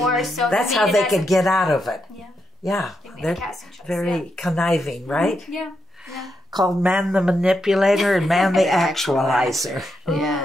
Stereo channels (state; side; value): normal; both; correlation 0.83